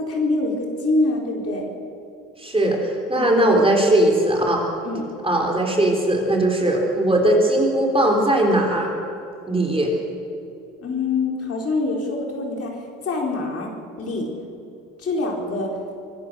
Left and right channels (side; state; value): both; normal; correlation 0.55